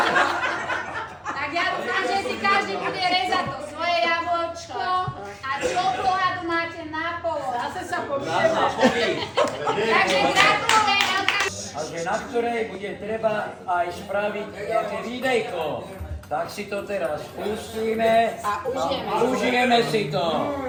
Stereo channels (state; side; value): identical; both; correlation 1.00